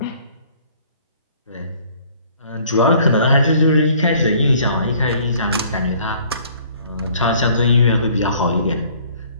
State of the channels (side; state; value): both; inverted; correlation -0.57